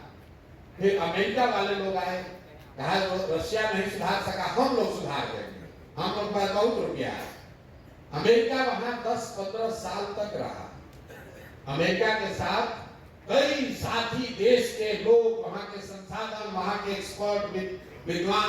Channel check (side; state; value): both; identical; correlation 1.00